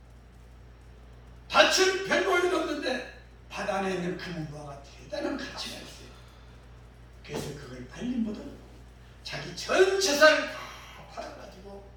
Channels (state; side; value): identical; both; correlation 1.00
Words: 밭은 100모이 넘는데 밭 안에 있는 검은 무화가 대단한 가치가 있어요. 그래서 그걸 발린 못하고 자기 전 재산을 다 팔아가지고